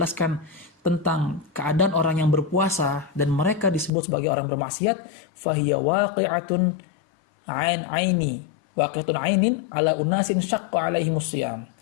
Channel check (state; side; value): drops out; right; at 3.9 s